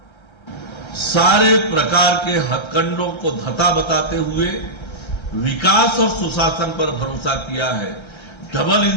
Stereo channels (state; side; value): late; right; 1.3 ms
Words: सारे प्रकार के हथकंडों को धता बताते हुए विकास और सुशासन पर भरोसा किया है, डबल